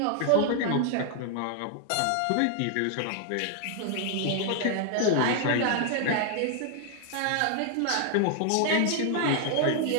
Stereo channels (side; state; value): both; different; correlation 0.00